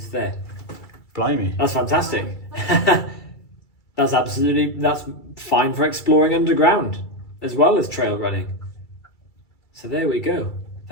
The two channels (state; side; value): late; right; 2.3 ms